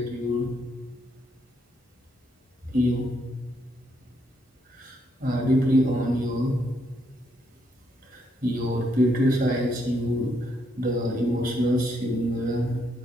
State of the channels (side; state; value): both; normal; correlation 0.75